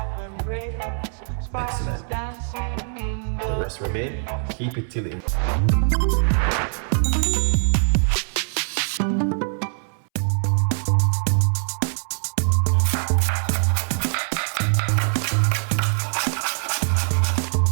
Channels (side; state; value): left; silent; 63 dB below the other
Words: Excellent. The rest remain. Keep it till it.